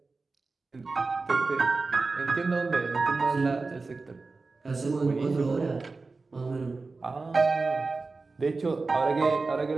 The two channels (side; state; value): left; quieter; 3.9 dB